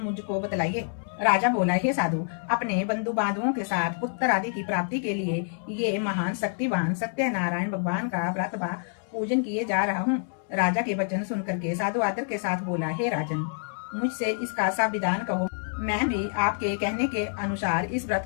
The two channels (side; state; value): right; silent; 60 dB below the other